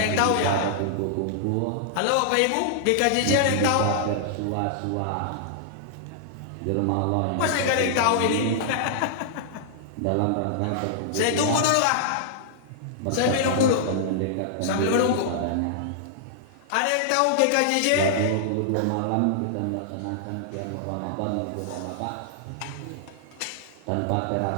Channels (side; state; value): both; different; correlation -0.01